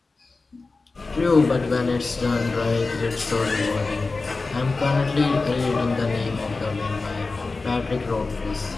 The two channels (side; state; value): right; quieter; 3.8 dB